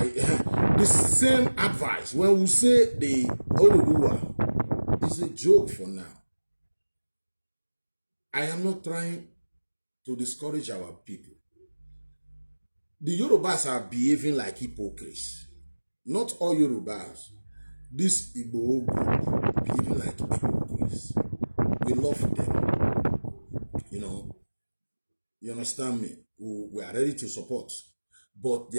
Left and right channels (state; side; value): inverted; both; correlation -1.00